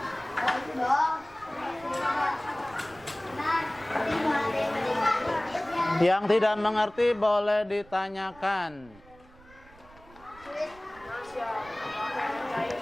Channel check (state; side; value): noise; right; rumble, 24 dB below the sound